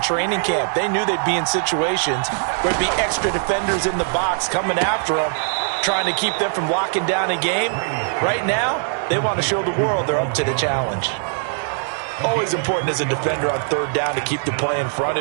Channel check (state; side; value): silent; left; digital silence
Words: training camp. They knew they'd be in situations where there'd be extra defenders in the box coming after them, trying to keep them from locking down a game. Right now, they want to show the world they're up to the challenge. Always important as a defender on 3rd down to keep the play in front